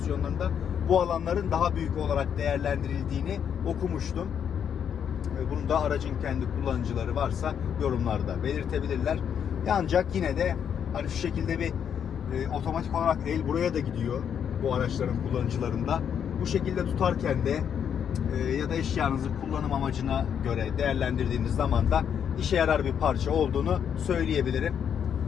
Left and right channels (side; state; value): right; quieter; 8.2 dB